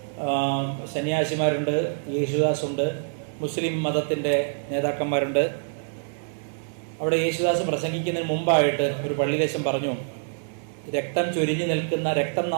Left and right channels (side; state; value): left; silent; digital silence